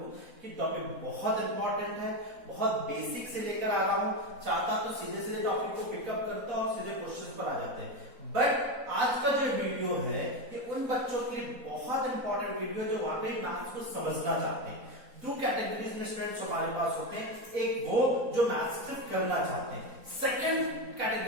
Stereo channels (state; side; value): late; left; 4.0 ms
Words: कि टॉपिक बहुत इंपॉर्टेंट है, बहुत बेसिक से लेकर आ रहा हूं. चाहता तो सीधे सीधे टॉपिक को पिकअप करता और सीधे क्वेश्चन पर आ जाते हैं, बट आज का जो वीडियो है ये उन बच्चों के लिए बहुत इंपॉर्टेंट वीडियो जो वाकई मैथ्स को समझना चाहते हैं. दो कैटेगरीज में स्टूडेंट्स हमारे पास होते हैं. एक वो जो मैथ्स सिर्फ करना चाहते हैं, सेकंड